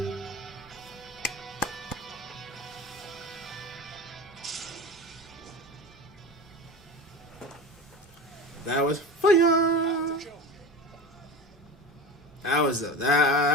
That was fire. That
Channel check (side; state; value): both; normal; correlation 0.29